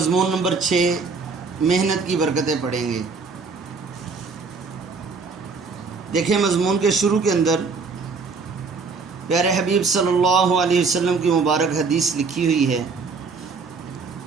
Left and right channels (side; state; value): left; quieter; 4.6 dB